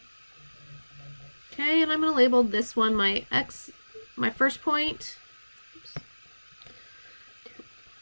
Okay, and I'm going to label this one my x, my first point. Oops.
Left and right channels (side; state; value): both; inverted; correlation -1.00